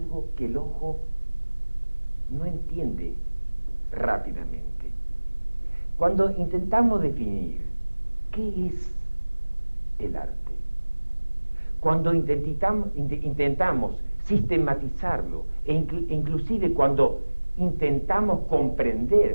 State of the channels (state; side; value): inverted; both; correlation -1.00